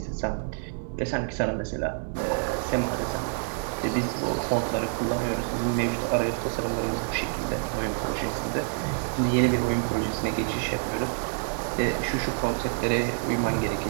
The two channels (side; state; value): left; silent; digital silence